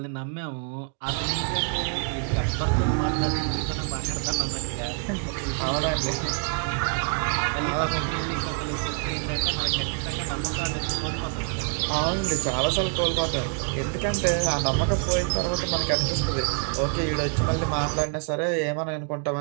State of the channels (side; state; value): left; quieter; 34.1 dB